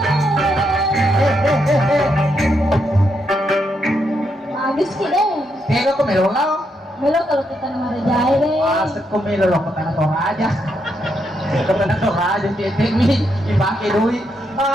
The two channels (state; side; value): normal; both; correlation 0.79